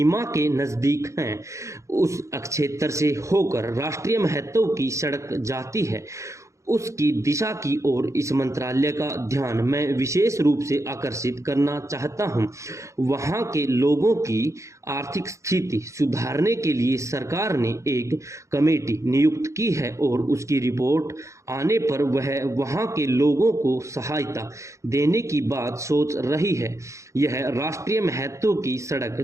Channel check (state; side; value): late; left; 0.15 ms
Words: के नज़दीक हैं। उस क्षेत्र से होकर राष्ट्रीय महत्व की सड़क जाती है, उसकी दिशा की ओर इस मंत्रालय का ध्यान मैं विशेष रूप से आकर्षित करना चाहता हूं। वहां के लोगों की आर्थिक स्थिति सुधारने के लिए सरकार ने एक कमेटी नियुक्त की है और उसकी रिपोर्ट आने पर वह वहां के लोगों को सहायता देने की बात सोच रही है। यह राष्ट्रीय महत्व की सड़क